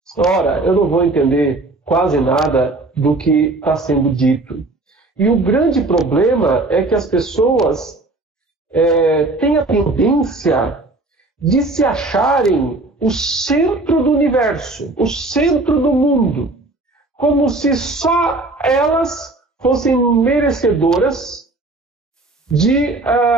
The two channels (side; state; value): left; quieter; 3.0 dB